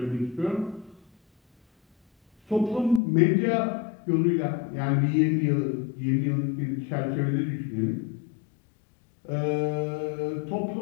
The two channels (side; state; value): right; drops out; at 3.0 s